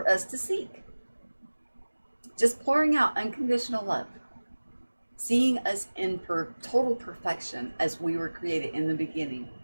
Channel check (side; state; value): both; inverted; correlation -1.00